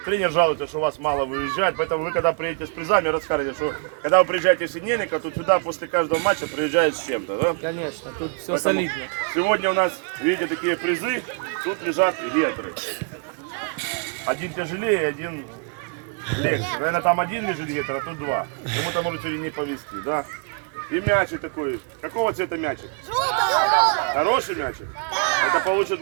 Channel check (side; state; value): left; quieter; 38.2 dB